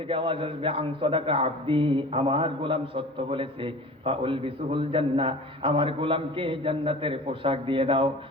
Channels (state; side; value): normal; both; correlation 0.39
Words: আওয়াজ আসবে আন সাদাকা আব্দি, আমার গোলাম সত্য বলেছে, ফাউলবিসুহুল জান্নাহ, আমার গোলামকে জান্নাতের পোশাক দিয়ে দাও।